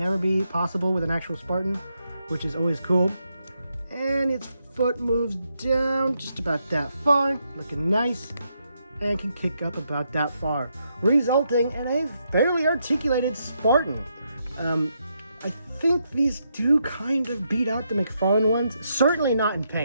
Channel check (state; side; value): inverted; both; correlation -0.80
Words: be possible with an actual Spartan, which is always cool. And its foot moves down just about that far, looking nice, and can kick up about that far, resulting in a fairly articulated Spartan. I think these do kind of beat out the McFarlane ones. Certainly not in